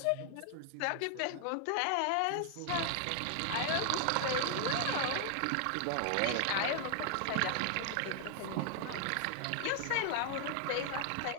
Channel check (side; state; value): both; different; correlation 0.00